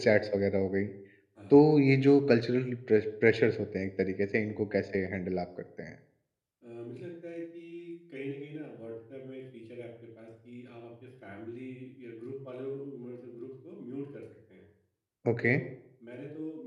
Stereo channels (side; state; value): both; identical; correlation 1.00